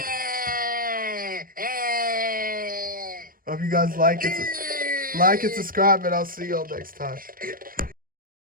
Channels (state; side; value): late; left; 0.41 ms